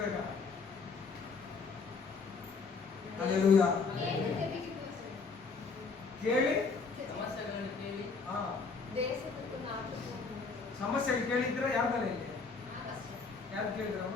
ಹಲ್ಲೆಲೂಯಾ. ಕೇಳಿ ಸಮಸ್ಯೆ ಕೇಳಿದ್ರ ಯಾವ್ದಾರ ಇಲ್ಲಿ ಯಾರು ಕೇಳಿದ್ರ?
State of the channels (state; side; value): quieter; right; 4.6 dB